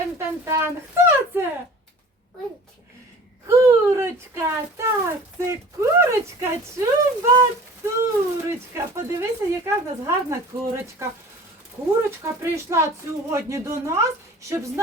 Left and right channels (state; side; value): normal; both; correlation 0.44